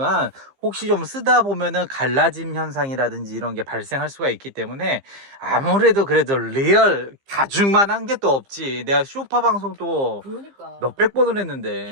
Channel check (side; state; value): left; late; 15 ms